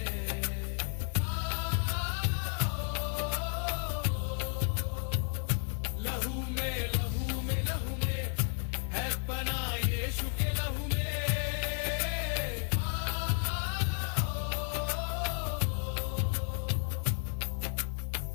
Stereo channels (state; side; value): silent; right; 56 dB below the other